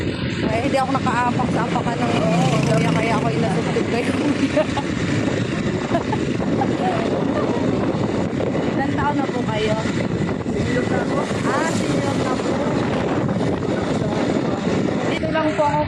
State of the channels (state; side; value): identical; both; correlation 1.00